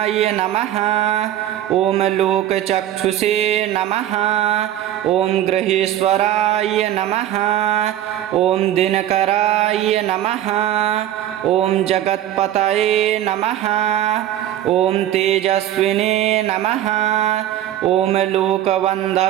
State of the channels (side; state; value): left; quieter; 12.2 dB